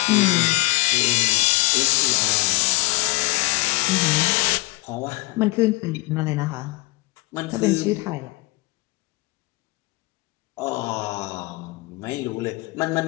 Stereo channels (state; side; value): quieter; right; 24.4 dB